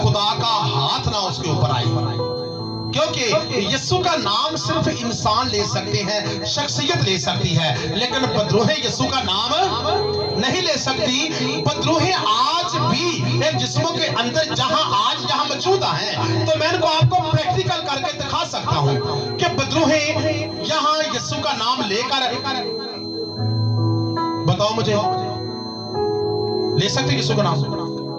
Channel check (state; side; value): identical; both; correlation 1.00